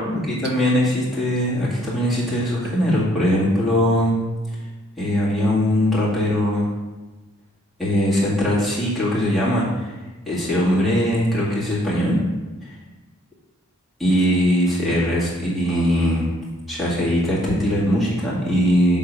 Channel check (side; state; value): both; normal; correlation 0.66